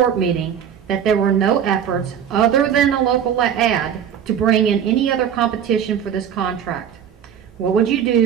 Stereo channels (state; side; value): quieter; left; 8.7 dB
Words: meeting that there were no efforts other than a local ad to bring in any other competition for this contract. What would you